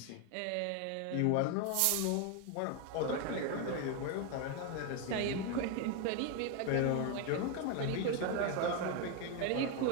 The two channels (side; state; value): both; different; correlation 0.01